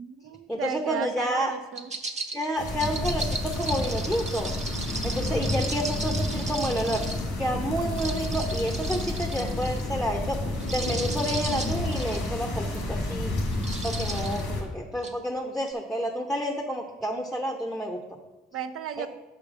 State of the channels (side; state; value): both; normal; correlation 0.67